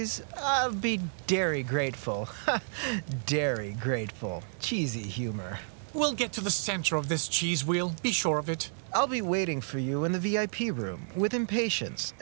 I'll be dairy grateful. Dairy grateful. Cheesy humor. We'll get to the center of this cheese wheel, be sure of it. I'll be waiting for you in the VIP room with impatience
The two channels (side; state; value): left; silent; digital silence